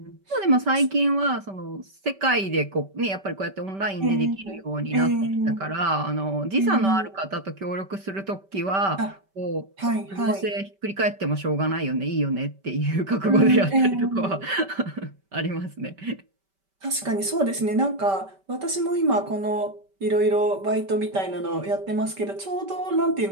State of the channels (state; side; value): late; left; 5.2 ms